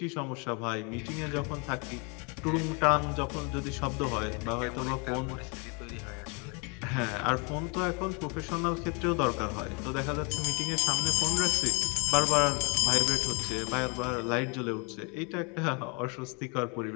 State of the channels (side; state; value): right; quieter; 32.8 dB